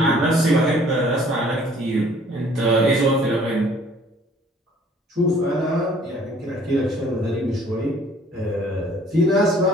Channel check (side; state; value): both; normal; correlation 0.56